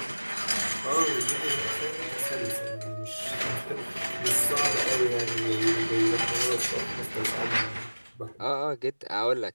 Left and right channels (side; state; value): both; inverted; correlation -1.00